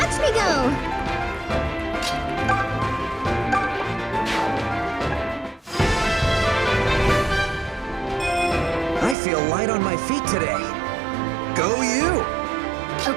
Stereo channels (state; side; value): drops out; left; at 9.2 s